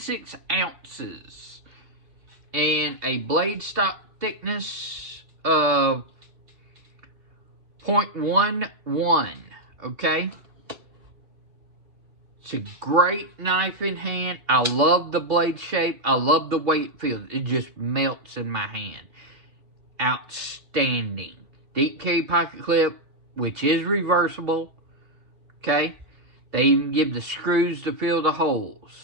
ounces and a blade stock thickness of 0.11, okay? It's a great knife in hand. I love the blade shape. I love the way it feels. It just melts in my hand. Outstanding. Deep carry pocket clip, which is reversible. Okay? They even give the screws to fill the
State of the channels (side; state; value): left; late; 2.7 ms